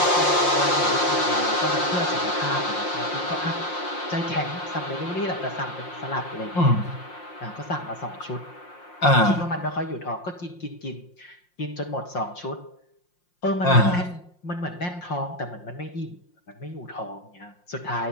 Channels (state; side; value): late; right; 5.6 ms